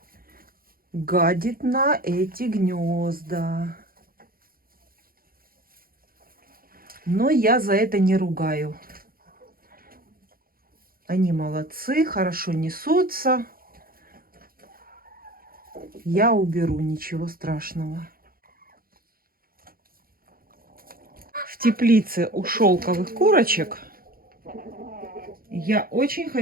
гадит на эти гнезда. Но я за это не ругаю. Они молодцы, хорошо несутся. Я уберу, ничего страшного. В теплице у шелковых курочек я очень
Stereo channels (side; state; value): left; late; 0.42 ms